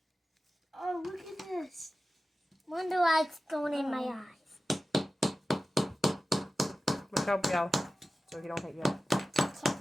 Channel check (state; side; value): normal; both; correlation 0.95